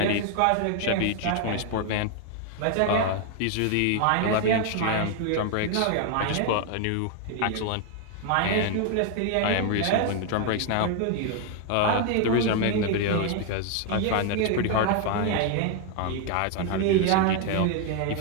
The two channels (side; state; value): both; different; correlation 0.00